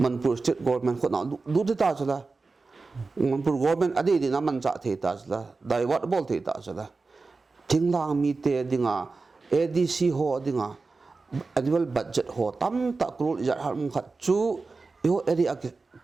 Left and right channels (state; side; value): quieter; left; 4.0 dB